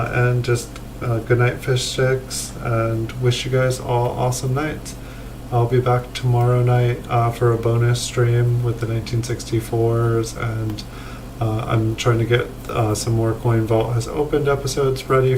just good night, fish sticks, and wish you guys all awesome nights. I'll be back tomorrow night for a bonus stream with the 1964s, and I'm trying to get some more Coin Vault has opened episodes ready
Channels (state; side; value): identical; both; correlation 1.00